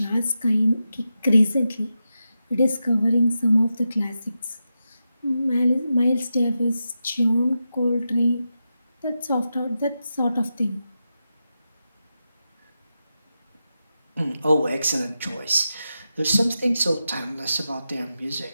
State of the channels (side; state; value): both; inverted; correlation -0.89